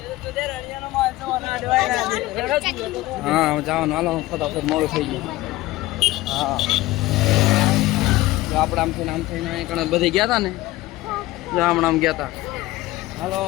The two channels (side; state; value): right; quieter; 18.1 dB